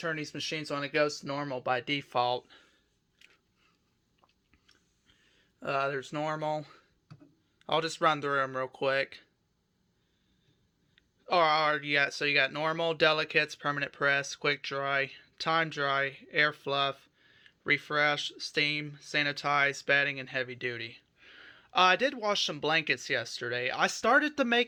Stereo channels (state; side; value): identical; both; correlation 1.00